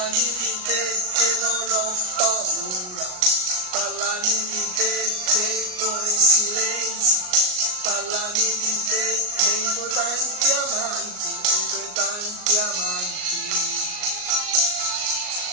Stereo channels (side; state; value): left; late; 38 ms